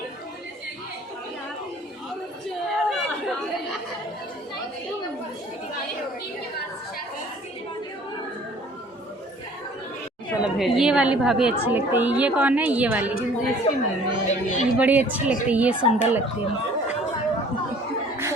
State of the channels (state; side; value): normal; both; correlation 0.52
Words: ये वाली भाभी अच्छी लगती है। ये कौन है? ये वाली ये बड़ी अच्छी लगती है। ये सुंदर लगती है।